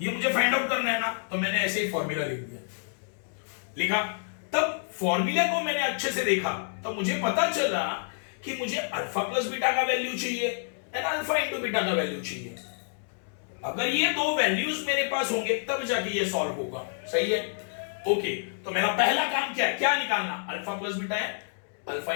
ये मुझे फाइंड आउट करना है ना, तो मैंने ऐसे ही फॉर्मूला लिख दिया, लिखा। तब फॉर्मूला को मैंने अच्छे से देखा, तो मुझे पता चला कि मुझे अल्फा प्लस बीटा का वैल्यू चाहिए एंड अल्फा इंटू बीटा का वैल्यू चाहिए। अगर ये दो वैल्यूज मेरे पास होंगे तब जाके ये सॉल्व होगा। सही है? ओके, तो मेरा पहला काम क्या है, क्या निकालना, अल्फा प्लस बीटा है, अल्फा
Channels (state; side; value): silent; right; digital silence